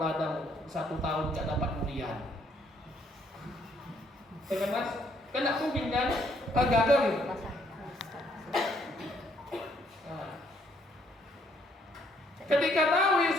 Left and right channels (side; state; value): both; normal; correlation 0.68